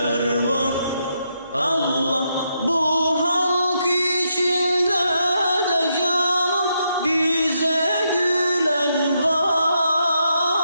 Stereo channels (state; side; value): inverted; both; correlation -0.80